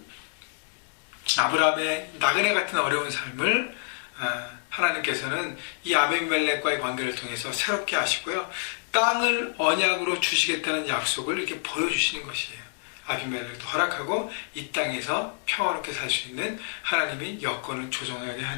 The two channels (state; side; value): silent; right; digital silence